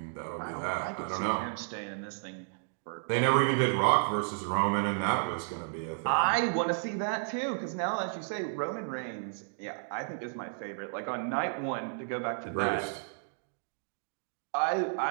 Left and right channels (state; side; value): silent; left; digital silence